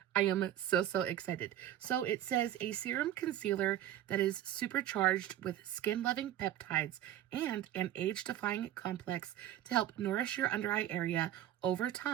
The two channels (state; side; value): quieter; left; 12.2 dB